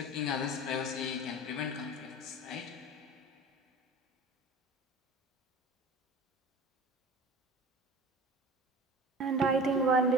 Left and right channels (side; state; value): both; normal; correlation 0.37